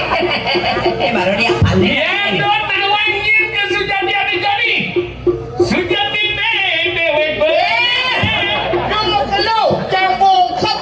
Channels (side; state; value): both; identical; correlation 1.00